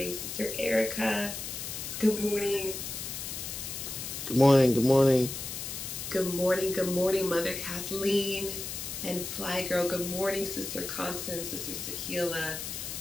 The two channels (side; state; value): left; noise; hiss, 6 dB below the sound